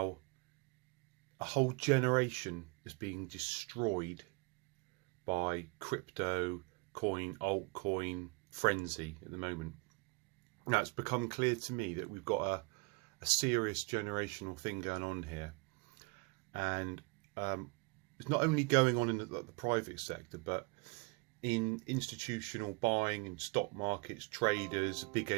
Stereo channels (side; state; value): left; quieter; 30.2 dB